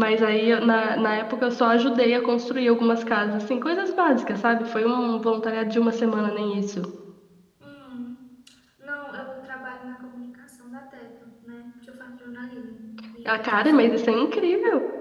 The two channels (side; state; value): both; identical; correlation 1.00